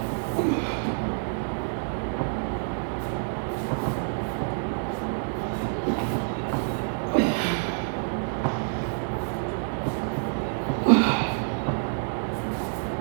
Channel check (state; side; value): silent; left; digital silence